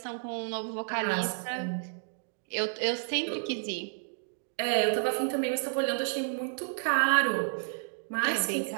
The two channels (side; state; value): left; silent; digital silence